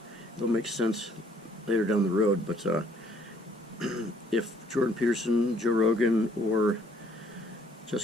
make sense later down the road. But if Jordan Peterson, Joe Rogan, or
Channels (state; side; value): normal; both; correlation 0.63